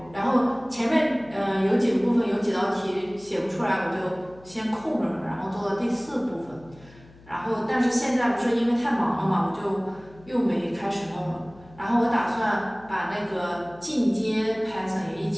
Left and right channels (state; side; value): noise; left; hum, 24 dB below the sound